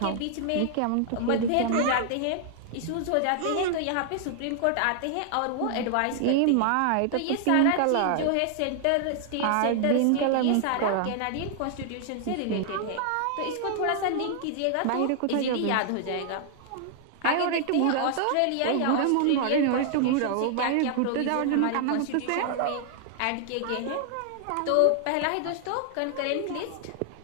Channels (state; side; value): different; both; correlation 0.00